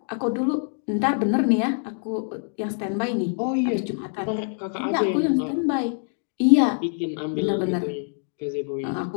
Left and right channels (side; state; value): right; silent; 62 dB below the other